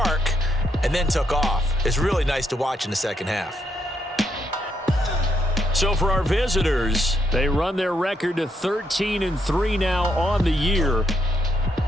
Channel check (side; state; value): both; normal; correlation 0.77